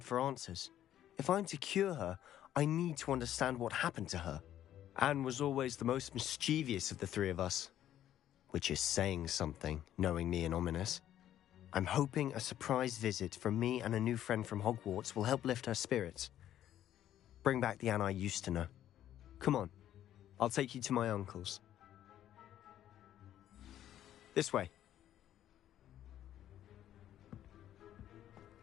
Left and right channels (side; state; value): right; quieter; 11.7 dB